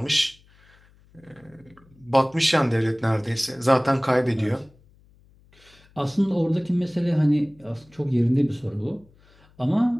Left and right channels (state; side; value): noise; left; hum, 29 dB below the sound